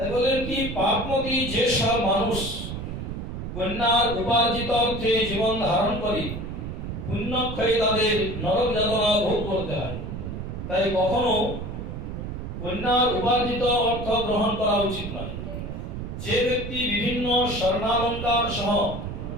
বলেন কি পাপমতী যে সব মানুষ কন্যার উপার্জিত অর্থে জীবন ধারণ করে, পুণ্যক্ষয়ে তাদের নরক যাতনা ভোগ করতে হয়। তাই কখনো কন্যার উপার্জিত অর্থ গ্রহণ করা উচিত নয়। যে ব্যক্তি বিভিন্ন স্বর্ণালঙ্কার সহ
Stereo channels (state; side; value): noise; right; rumble, 7 dB below the sound